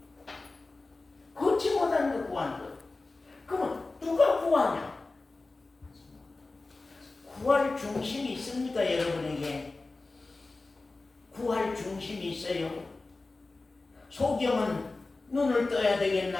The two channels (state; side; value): quieter; right; 3.4 dB